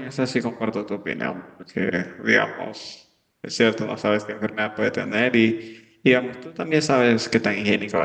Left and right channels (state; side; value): identical; both; correlation 1.00